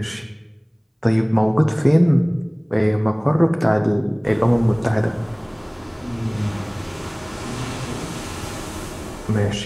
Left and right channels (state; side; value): identical; both; correlation 1.00